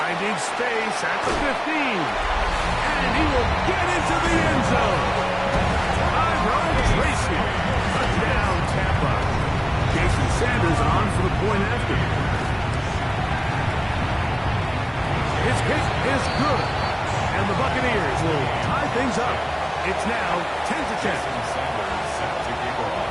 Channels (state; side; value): identical; both; correlation 1.00